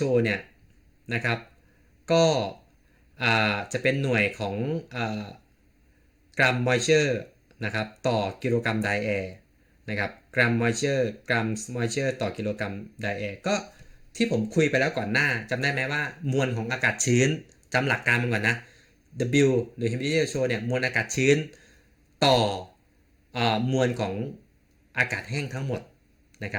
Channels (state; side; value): identical; both; correlation 1.00